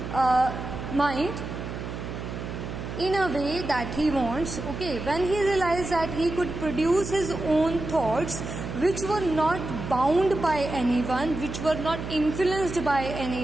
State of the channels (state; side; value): noise; right; hum, 7 dB below the sound